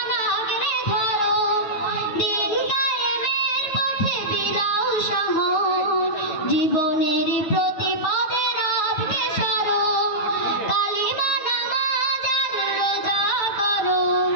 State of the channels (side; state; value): right; late; 9.1 ms